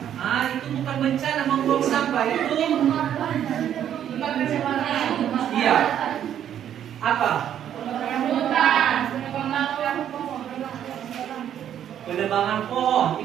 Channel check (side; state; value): left; quieter; 10.0 dB